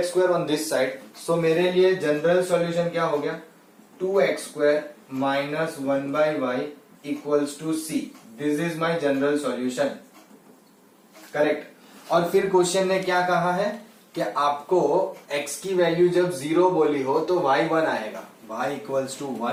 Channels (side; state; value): both; identical; correlation 1.00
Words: square on this side. So मेरे लिए जनरल सॉल्यूशन क्या हो गया 2x square -1 by y equals to c. This is my general solution. Correct. और फिर क्वेश्चन ने क्या कहा है कि आपको x की वैल्यू जब 0 बोली हो तो y 1 आएगा. y equals to